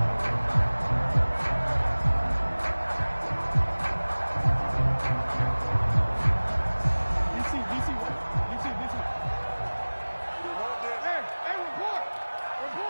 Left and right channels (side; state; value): both; inverted; correlation -1.00